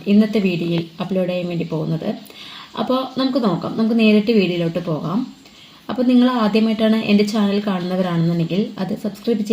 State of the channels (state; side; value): identical; both; correlation 1.00